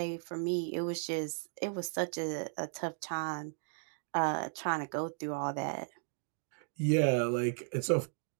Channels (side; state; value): left; silent; digital silence